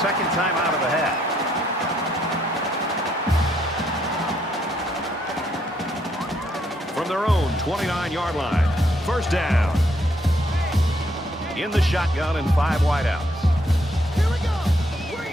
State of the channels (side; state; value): both; normal; correlation 0.72